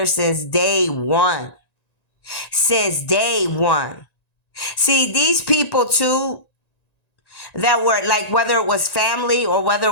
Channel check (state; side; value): late; right; 1.9 ms